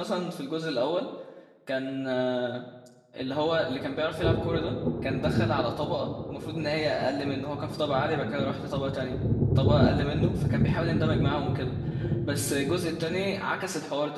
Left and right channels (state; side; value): identical; both; correlation 1.00